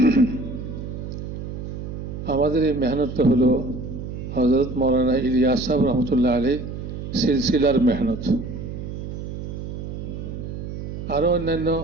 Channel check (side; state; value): right; noise; hum, 7 dB below the sound